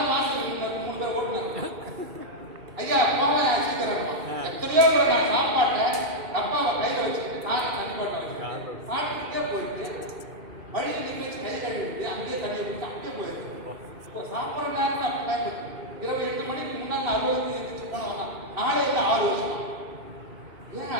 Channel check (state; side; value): late; left; 2.8 ms